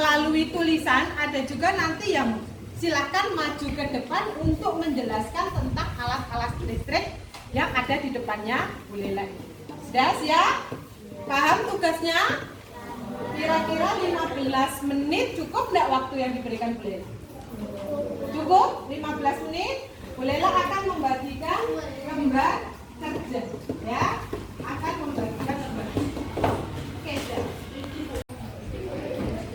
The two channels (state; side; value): identical; both; correlation 1.00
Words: tulisan, ada juga nanti yang silahkan maju ke depan untuk menjelaskan tentang alat-alat listrik yang ada di depannya Bu Lela ini. Sudah ya? Paham tugasnya? Kira-kira 15 menit cukup enggak waktu yang diberikan Bu Lela? Cukup? 15 menit? Bu Lela akan membagikan gambar kerja ya. Akan membagikan gambar. Oke, sudah.